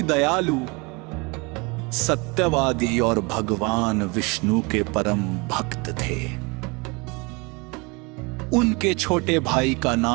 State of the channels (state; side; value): quieter; left; 27.9 dB